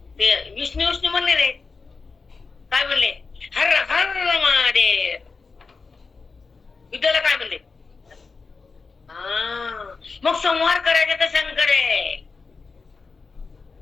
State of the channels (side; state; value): right; quieter; 4.5 dB